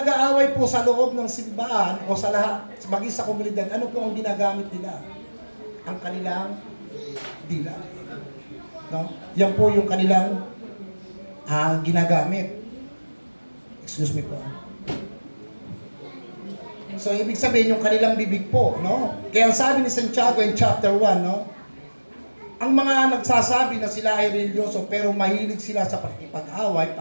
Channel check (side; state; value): both; inverted; correlation -1.00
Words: po sa loob ng simbahan o sa lahat, maging sa komunidad, ano po ang ginagamit nila? Ang kanilang dila. No? Yan po yung kanilang ginagamit. Excuse me po. So, ibig sabihin yung kanilang bibig po, no? Kaya ang sabi ni Santiago in chapter 1, no? Ang mga nagsasabi na sila ay religyoso pero mahilig sila sa pakikipag-away,